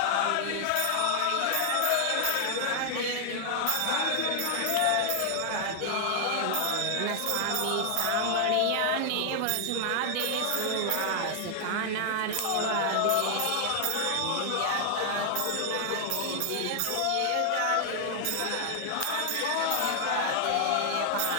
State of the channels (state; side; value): different; both; correlation 0.00